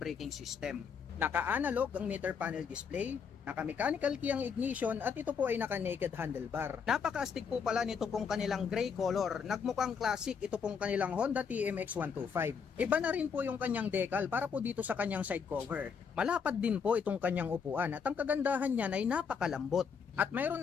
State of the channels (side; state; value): right; quieter; 6.3 dB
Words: system. Naka-analog ang meter panel display. Naka-mechanical key ang ignition at ito po ay naka-naked handlebar. Napaka-astig po pala nito pong kanilang gray color. Nagmukhang classic ito pong kanilang Honda TMX125. Iba na rin po yung kanyang decal para po dito sa kanyang side cover. Malapad din po itong kanyang upuan at ang kagandahan niyan ay napakalambot. At mayroon